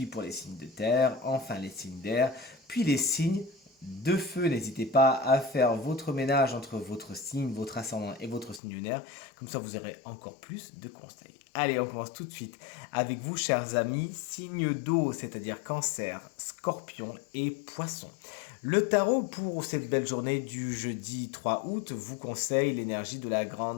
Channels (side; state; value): right; drops out; at 8.6 s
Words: pour les signes de terre, enfin les signes d'air, puis les signes de feu. N'hésitez pas à faire votre ménage entre votre signe, votre ascendant et votre signe lunaire. Comme ça, vous aurez encore plus de conseils. Allez, on commence tout de suite avec vous, chers amis, signes d'eau, c'est-à-dire cancer, scorpion et poisson. Le tarot pour cette belle journée du jeudi 3 août vous conseille l'énergie de la